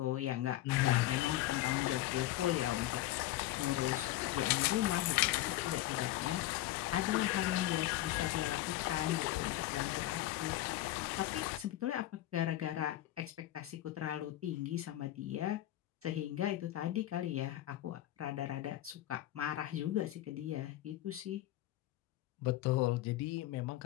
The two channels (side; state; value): right; quieter; 15.1 dB